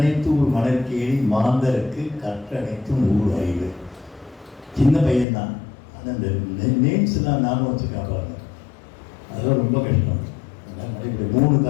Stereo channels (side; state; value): right; drops out; at 5.2 s